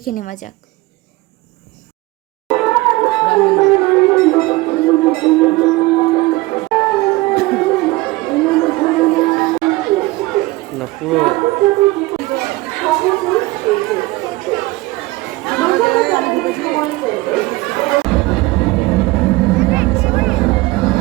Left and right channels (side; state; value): left; quieter; 20.7 dB